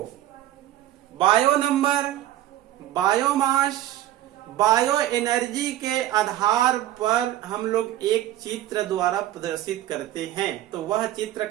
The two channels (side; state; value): left; quieter; 13.5 dB